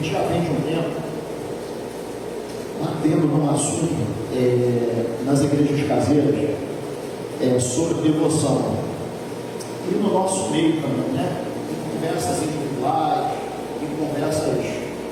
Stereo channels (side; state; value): both; identical; correlation 1.00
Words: já vem de um tempo batendo num assunto nas igrejas caseiras sobre devoção. E no nosso meio também, né? Em conversas individuais, em conversas